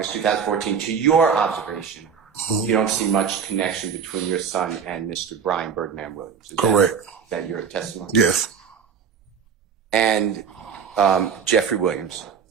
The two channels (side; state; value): left; quieter; 6.9 dB